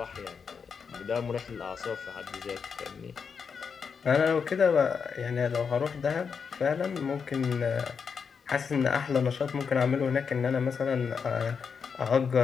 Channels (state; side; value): quieter; right; 6.1 dB